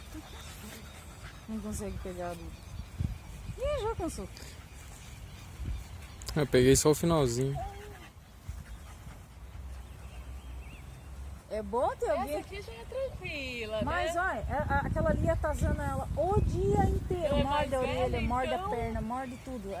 Não consegue pegar ali. Ih, já cansou. Eu peguei só o finalzinho. É bom ter alguém. Essa aqui já é tranquila, Mas né? olha, aquela ali atazana ela o dia inteiro. Ela é Morde mais a orelha, velha, morde então. a perna, morde tudo.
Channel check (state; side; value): identical; both; correlation 1.00